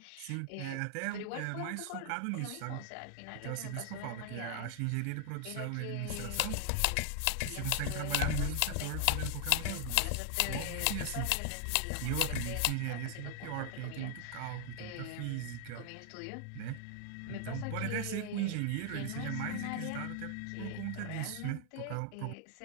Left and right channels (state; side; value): different; both; correlation 0.00